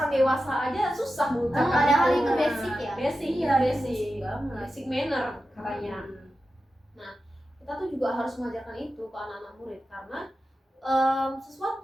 dewasa aja susah mengucapkan. Padahal itu. itu basic ya. Basic, Iya, basic. banget. Basic manner katanya. Hmm. Kita tuh juga harus mengajarkan itu ke anak-anak murid karena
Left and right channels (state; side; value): normal; both; correlation 0.92